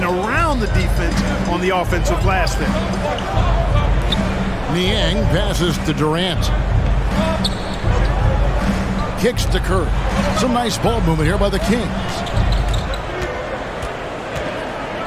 around the defense on the offensive glass there. Niang passes to Durant. Kicks to Curry. Some nice ball movement here by the Kings.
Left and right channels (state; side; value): identical; both; correlation 1.00